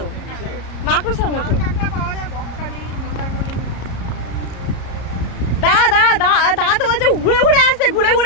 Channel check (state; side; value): late; right; 33 ms